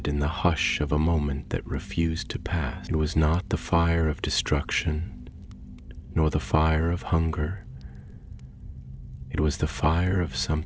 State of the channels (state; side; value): identical; both; correlation 1.00